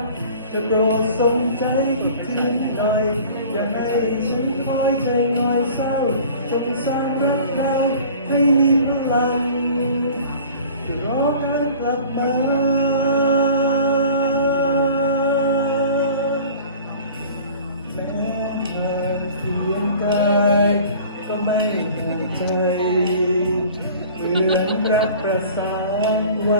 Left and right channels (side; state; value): both; inverted; correlation -0.45